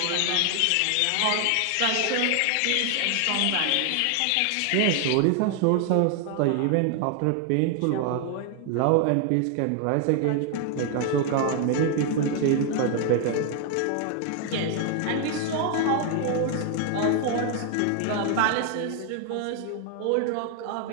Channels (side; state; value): both; different; correlation 0.00